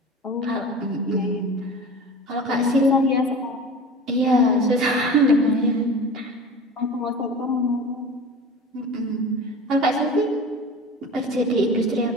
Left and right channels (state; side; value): normal; both; correlation 0.35